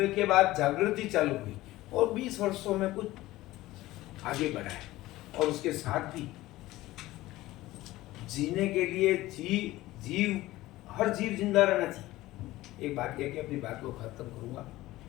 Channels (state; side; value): quieter; right; 17.3 dB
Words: के बाद जागृति चालू हुई और 20 वर्षों में कुछ आगे बढ़ा है। और उसके साथ भी जीने के लिए हर जीव जिंदा रहना चाहिए। एक बात कह के अपनी बात को खत्म करूंगा